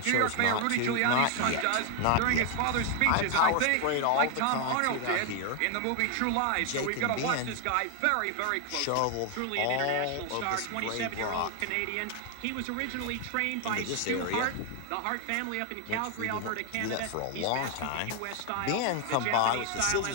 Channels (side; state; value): both; different; correlation 0.00